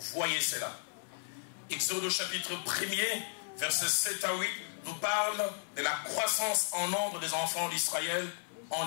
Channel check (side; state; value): right; silent; 55 dB below the other